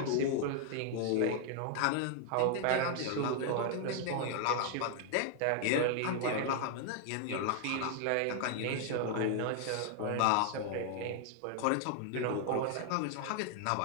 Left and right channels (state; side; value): different; both; correlation 0.00